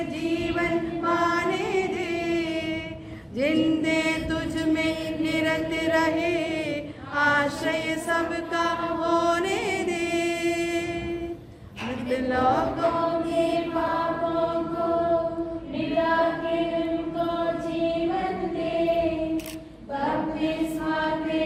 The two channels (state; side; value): identical; both; correlation 1.00